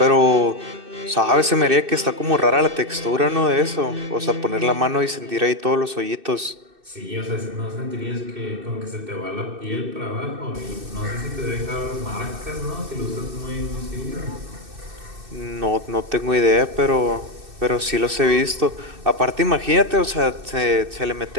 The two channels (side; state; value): left; late; 2.6 ms